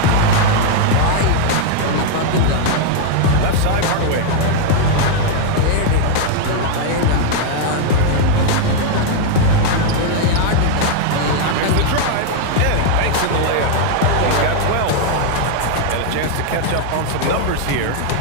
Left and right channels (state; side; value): different; both; correlation 0.00